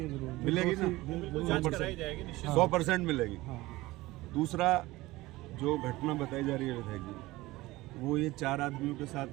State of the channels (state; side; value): quieter; left; 19.2 dB